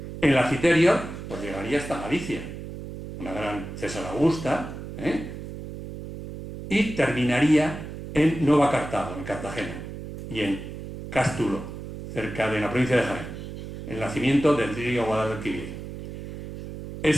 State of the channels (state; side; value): noise; right; hum, 10 dB below the sound